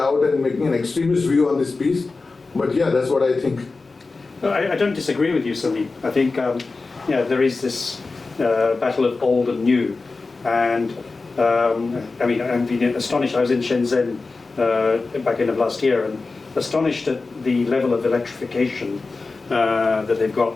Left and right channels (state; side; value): quieter; right; 3.8 dB